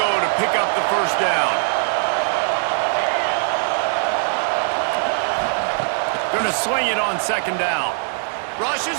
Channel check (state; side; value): silent; left; digital silence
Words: to pick up the first down. Going to swing it on second down. Rush is